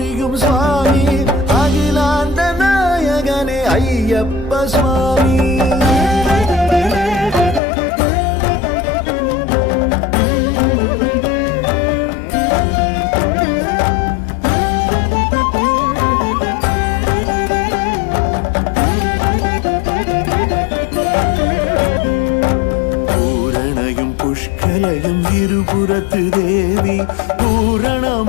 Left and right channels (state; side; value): drops out; right; at 7.6 s